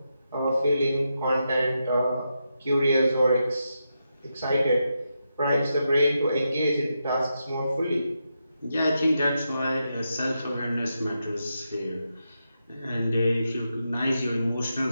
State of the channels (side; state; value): both; inverted; correlation -0.85